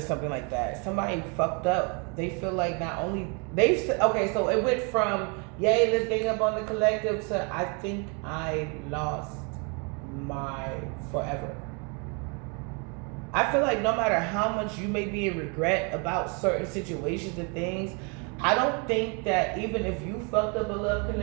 something like that. Somebody fucked up. They feel like not only so it went from let's gang up on the collective to I think I lost my forever. I feel like no matter how much you may be in regret about certain situations and things, I don't think that even if you fucked up a love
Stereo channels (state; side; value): quieter; left; 34.4 dB